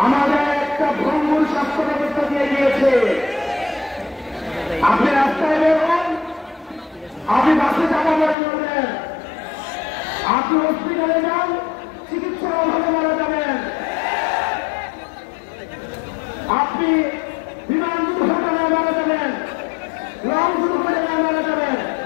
আমাদের একটা ভঙ্গুর স্বাস্থ্য ব্যবস্থা দিয়ে গিয়েছে। আপনি রাস্তায় বেরোন, আপনি বাসে চাপা পড়ে যাবেন, আপনি হসপিটালে যান, চিকিৎসার অভাবে মারা যাবেন, আপনি বিমান দুর্ঘটনায় মারা যাবেন, লং দুর্ঘটনায় মারা যাবেন।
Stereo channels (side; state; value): right; drops out; at 8.3 s